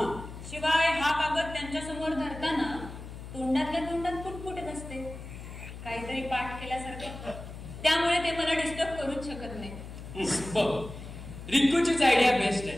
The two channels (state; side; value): noise; left; hum, 12 dB below the sound